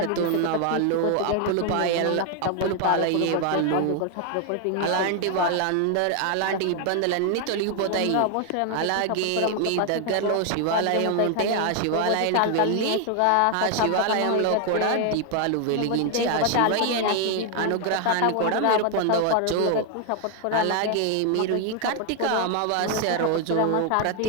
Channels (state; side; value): different; both; correlation 0.00